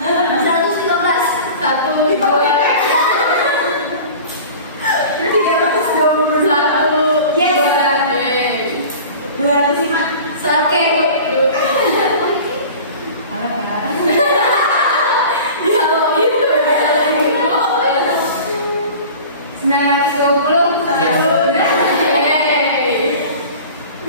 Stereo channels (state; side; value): inverted; both; correlation -0.40